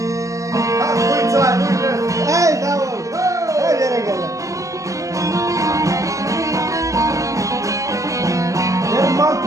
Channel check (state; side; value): late; left; 0.16 ms